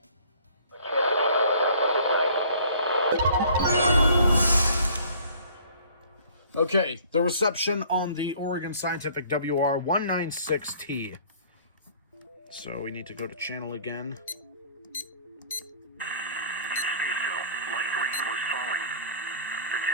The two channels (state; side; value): inverted; both; correlation -0.53